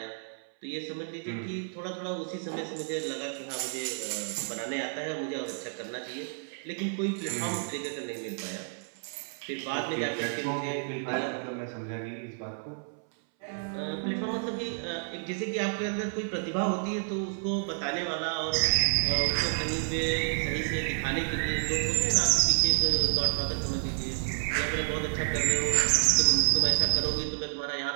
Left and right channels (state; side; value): silent; left; 58 dB below the other